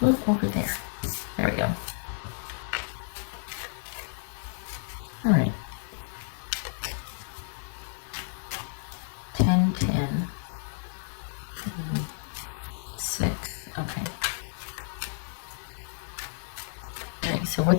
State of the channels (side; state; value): right; silent; digital silence